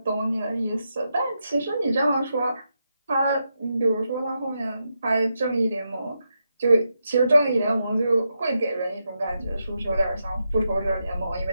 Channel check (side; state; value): both; inverted; correlation -0.85